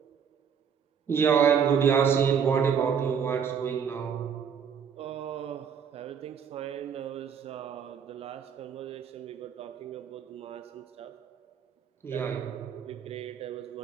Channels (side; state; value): left; quieter; 7.3 dB